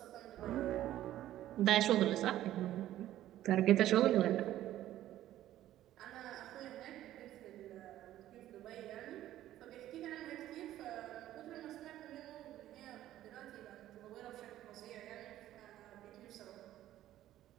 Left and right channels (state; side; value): quieter; left; 13.4 dB